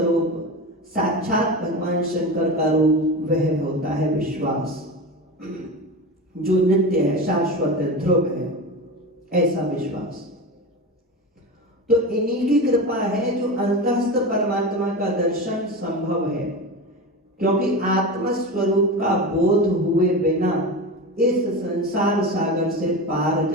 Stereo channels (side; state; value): both; normal; correlation 0.25